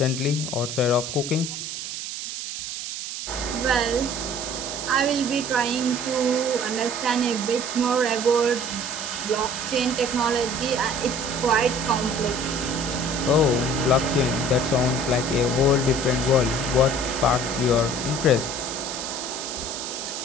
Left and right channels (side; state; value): right; noise; hiss, 6 dB below the sound